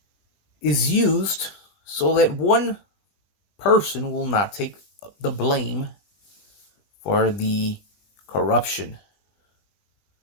is used so that one person will not take the blame for the corruption.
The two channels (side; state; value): right; late; 20 ms